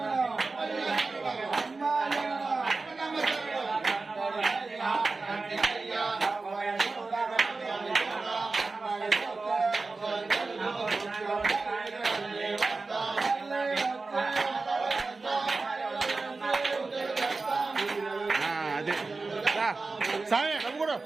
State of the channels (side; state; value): left; quieter; 3.8 dB